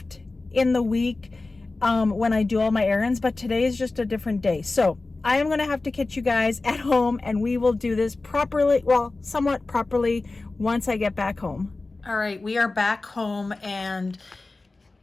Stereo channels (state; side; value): quieter; right; 3.3 dB